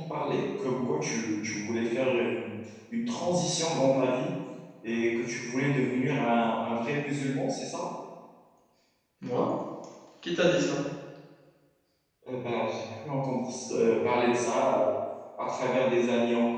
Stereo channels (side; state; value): both; identical; correlation 1.00